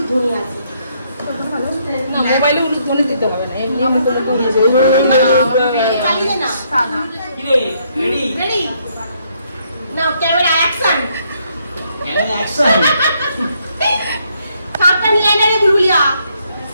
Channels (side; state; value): both; inverted; correlation -0.72